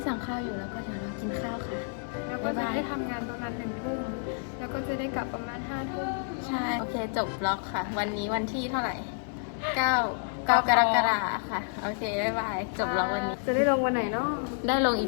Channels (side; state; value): right; silent; digital silence